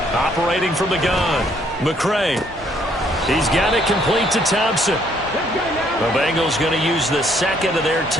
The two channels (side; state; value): both; normal; correlation 0.67